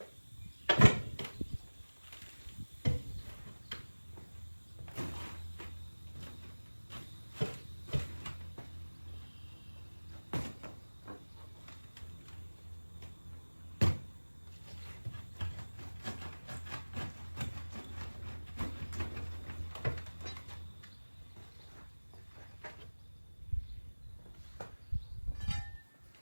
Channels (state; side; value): inverted; both; correlation -1.00